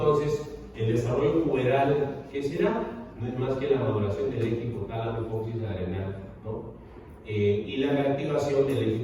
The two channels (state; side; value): identical; both; correlation 1.00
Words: el desarrollo puberal, ¿qué será? No es más que la maduración del eje hipotálamo hipófisis adrenal, ¿no? Y la reactivación del eje